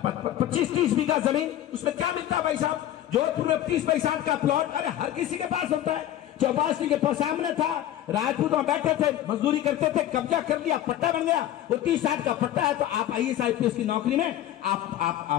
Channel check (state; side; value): quieter; right; 12.4 dB